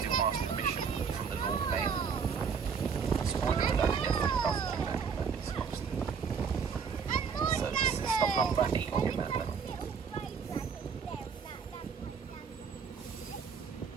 ask permission from the Lord Mayor. Spoiler alert, he definitely doesn't do that, but it's supposed to. So this is stop number 8 on your map level.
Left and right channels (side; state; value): left; quieter; 6.2 dB